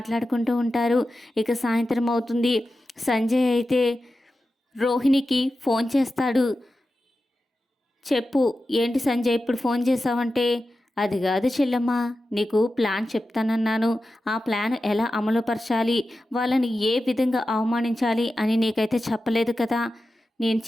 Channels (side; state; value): both; normal; correlation 0.92